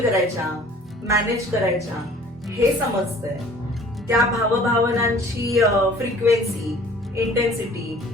करायच्या, मॅनेज करायच्या हे समजतंय. त्या भावभावनांची फ्रिक्वेन्सी, इंटेन्सिटी,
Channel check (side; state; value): both; normal; correlation 0.51